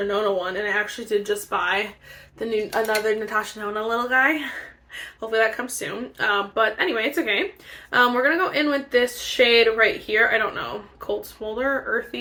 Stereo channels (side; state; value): both; identical; correlation 1.00